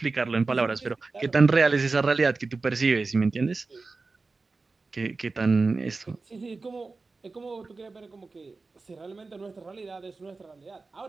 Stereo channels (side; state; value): left; quieter; 3.9 dB